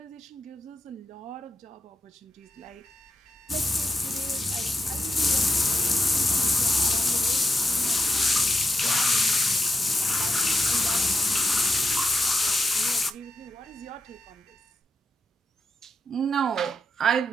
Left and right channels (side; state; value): both; normal; correlation 0.85